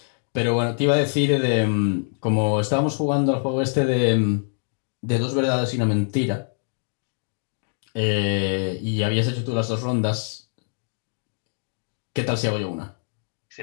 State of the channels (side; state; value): right; silent; 62 dB below the other